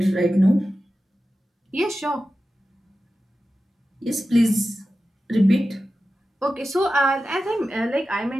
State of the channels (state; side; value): normal; both; correlation 0.93